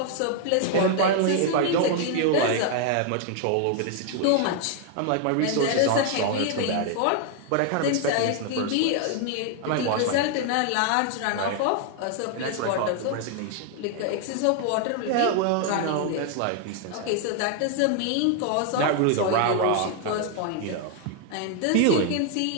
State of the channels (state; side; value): different; both; correlation 0.00